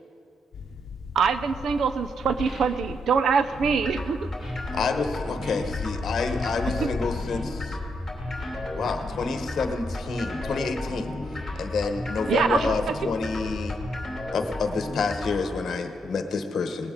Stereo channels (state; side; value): normal; both; correlation 0.78